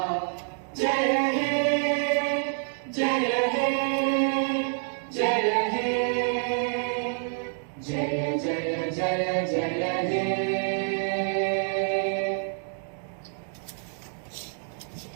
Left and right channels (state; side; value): silent; left; digital silence